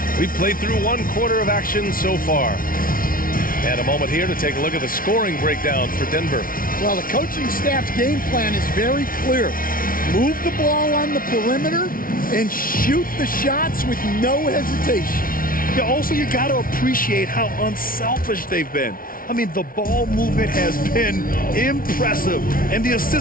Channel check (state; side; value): late; right; 0.42 ms